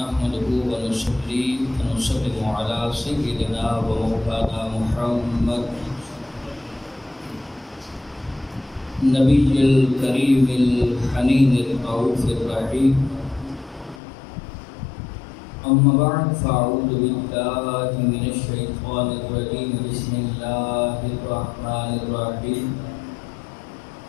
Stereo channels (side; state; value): right; drops out; at 14.0 s